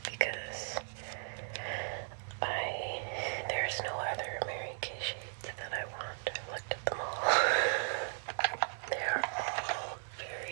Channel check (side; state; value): left; silent; digital silence